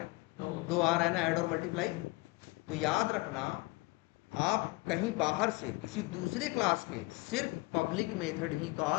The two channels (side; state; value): right; quieter; 23.4 dB